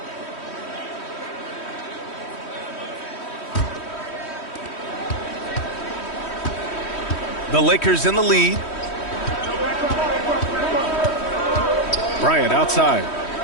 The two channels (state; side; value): late; right; 3.1 ms